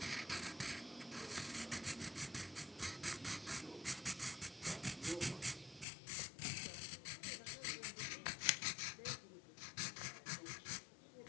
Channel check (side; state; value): right; drops out; at 5.9 s